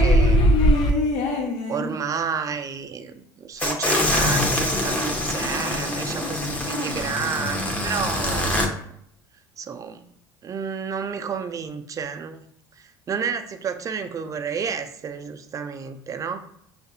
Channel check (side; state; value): both; normal; correlation 0.42